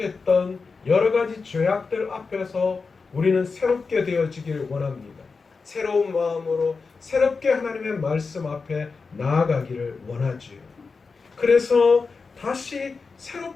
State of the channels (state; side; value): quieter; right; 4.6 dB